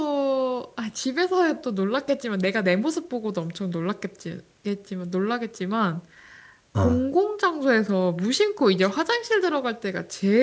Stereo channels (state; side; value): identical; both; correlation 1.00